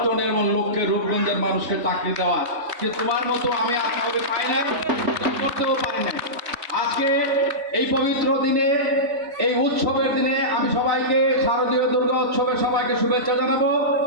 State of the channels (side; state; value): left; late; 4.0 ms